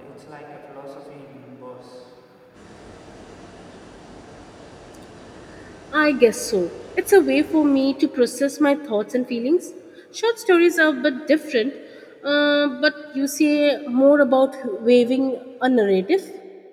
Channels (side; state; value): both; identical; correlation 1.00